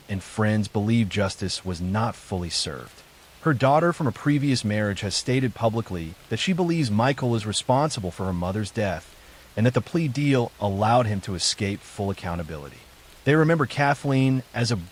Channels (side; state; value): both; identical; correlation 1.00